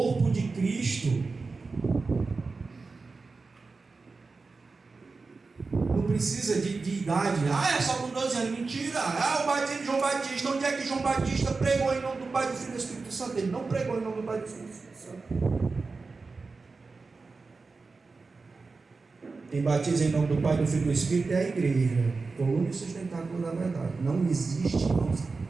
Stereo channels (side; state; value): left; quieter; 4.1 dB